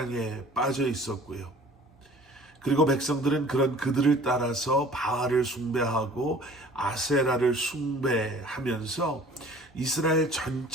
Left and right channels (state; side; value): normal; both; correlation 0.49